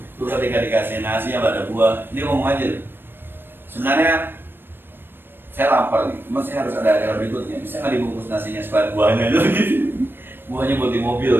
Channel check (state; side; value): late; left; 0.098 ms